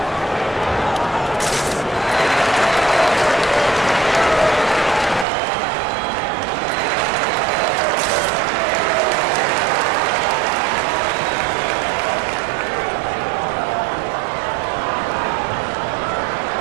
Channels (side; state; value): left; drops out; at 5.2 s